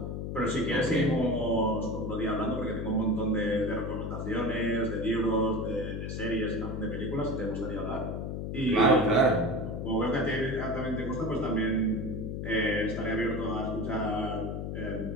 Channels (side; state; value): left; noise; hum, 4 dB below the sound